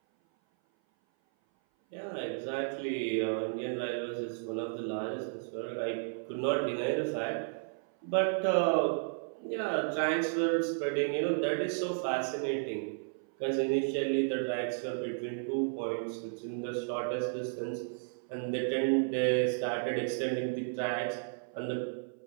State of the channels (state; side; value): silent; left; 56 dB below the other